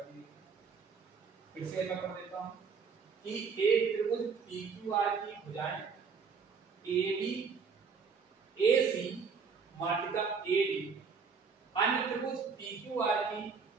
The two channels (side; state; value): left; quieter; 5.5 dB